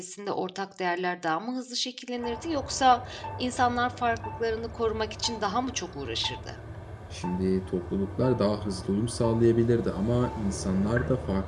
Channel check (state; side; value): identical; both; correlation 1.00